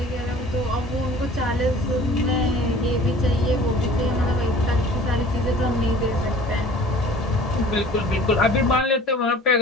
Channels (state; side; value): normal; both; correlation 0.46